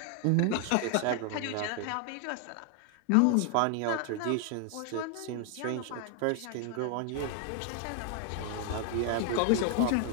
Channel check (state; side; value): different; both; correlation 0.00